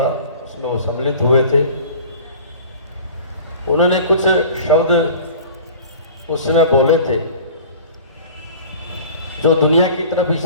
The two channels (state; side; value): inverted; both; correlation -0.44